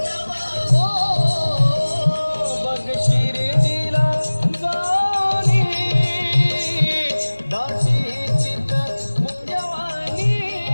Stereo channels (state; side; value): inverted; both; correlation -1.00